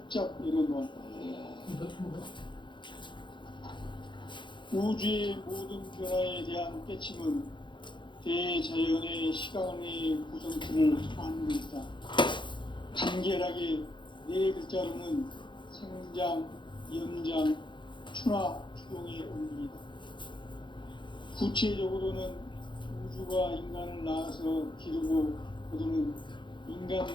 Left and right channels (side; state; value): right; late; 0.23 ms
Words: 열어놓았다. 우주의 모든 변화에 대한 깨침은 대자연의 시간의 구성틀을 아는 것이다. 간결하게 네 글자로는 생장, 연장, 추나 추동의 원리이다. 구체적으로는 우주가 인간을 낳아서 기르고 거두는 인간